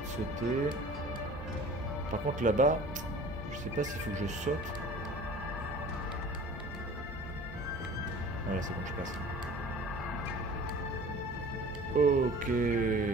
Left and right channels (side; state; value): both; normal; correlation 0.44